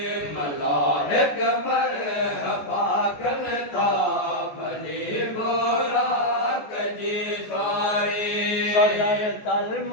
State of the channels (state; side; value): late; right; 14 ms